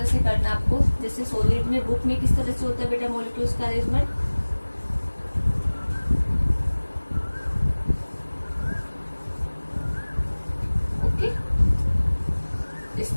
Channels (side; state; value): both; inverted; correlation -1.00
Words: से करना है आपको। जैसे सॉलिड में, बुक में किस तरह से होता है बेटा मॉलिक्यूल्स का अरेंजमेंट। ओके, इस